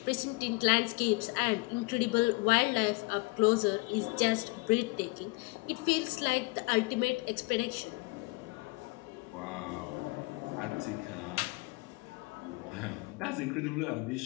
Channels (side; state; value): right; quieter; 26.0 dB